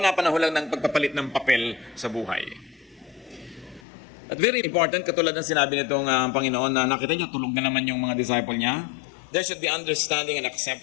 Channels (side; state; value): right; drops out; at 3.8 s